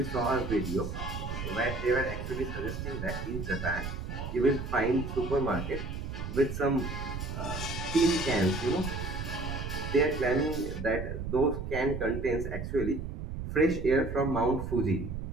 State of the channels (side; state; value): right; noise; rumble, 5 dB below the sound